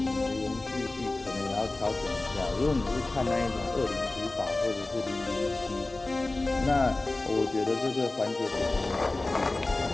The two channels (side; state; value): right; quieter; 3.0 dB